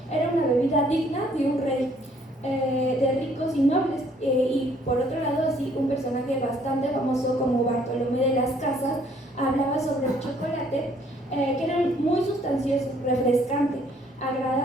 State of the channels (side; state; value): both; normal; correlation 0.63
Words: era una bebida digna de un rey, de ricos y nobles, y por otro lado, así un personaje bastante famoso como Bartolomé de las Casas hablaba sobre el chocolate, que era muy sustancioso, refrescante,